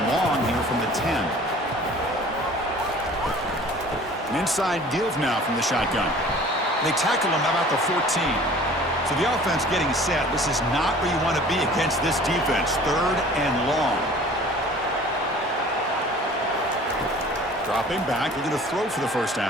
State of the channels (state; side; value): normal; both; correlation 0.47